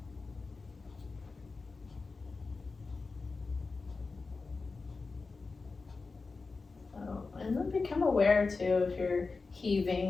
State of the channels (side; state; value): right; quieter; 4.1 dB